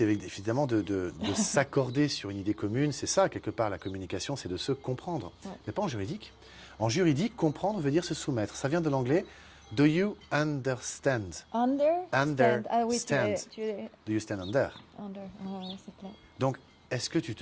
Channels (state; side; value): identical; both; correlation 1.00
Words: évidemment de s'accorder sur une idée commune. C'est ça, quelque part, la communication, c'est de se comprendre. Ouais. Mais pas en juridique. En juridique, comprendre veut dire se soumettre. Ça vient de l'anglais « Do you understand » Understand. Ah oui, Do you stand under? C'est clair. Donc, est-ce que tu